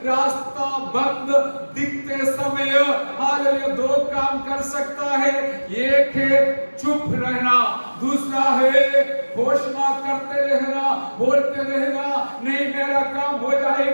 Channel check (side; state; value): both; inverted; correlation -1.00